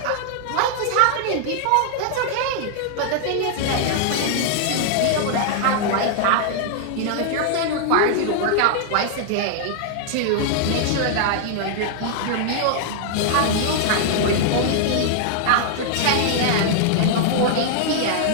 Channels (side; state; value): both; different; correlation -0.01